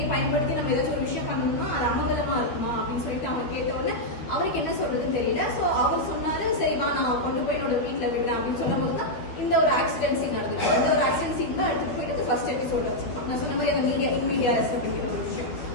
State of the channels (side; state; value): right; late; 12 ms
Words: பயன்படுத்தி நம்ம ஏதாச்சும் ஒரு விஷயம் பண்ணணும்னா அது அமங்கலமா இருக்குமா அப்படின்னு சொல்லிட்டு அவன் கேட்ட உடனே அவருக்கு என்ன சொல்றதுன்னு தெரியல. ஸோ அவர் சொன்னாரு, சரிவா நான் கொண்டு போய் என்னோட வீட்டில் விடுறேன் அப்படின்னு சொல்லும் போது தான் இந்த ஒரு ஆக்சிடென்ட் சீன் நடந்துச்சு. இந்த ஒரு ஆக்சிடென்ட் சீன் தான் எடுத்துட்டு போயிட்டு ஃபர்ஸ்ட் எபிசோட்ல வச்சிருப்பாங்க. நான் சொன்ன மாதிரி அந்த மீடியா அப்படிங்கிற ஒரு விஷயம்.